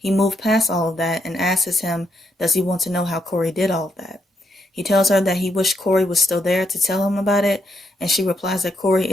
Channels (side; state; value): both; normal; correlation 0.78